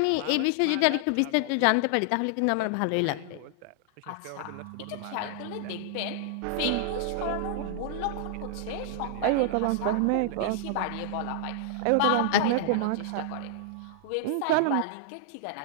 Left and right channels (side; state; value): both; different; correlation -0.01